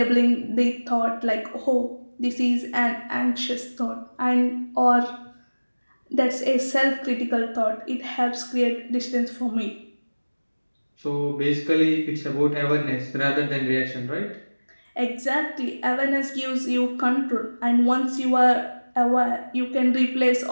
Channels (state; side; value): inverted; both; correlation -1.00